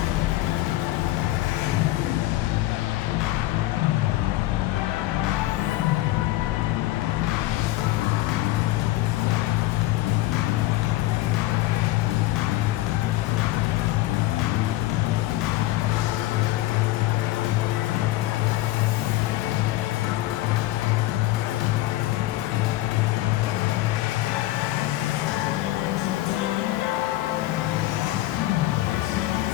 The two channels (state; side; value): quieter; right; 16.6 dB